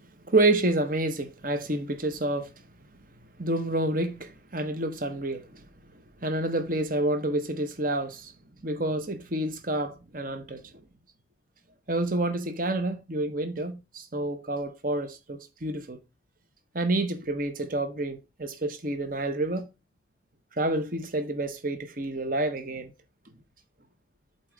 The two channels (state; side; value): normal; both; correlation 0.21